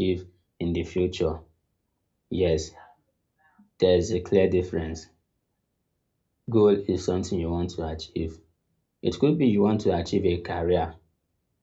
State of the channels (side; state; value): both; identical; correlation 1.00